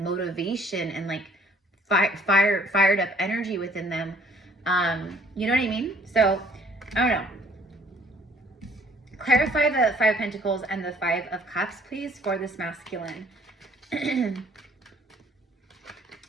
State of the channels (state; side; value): normal; both; correlation 0.59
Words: and like fired up energy within them. You know what I mean? So I don't know. Clarify the 5 of Pentacles and the 5 of Cups, please, for this masculine.